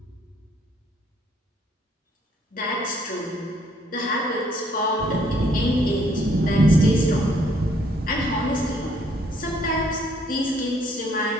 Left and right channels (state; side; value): normal; both; correlation 0.66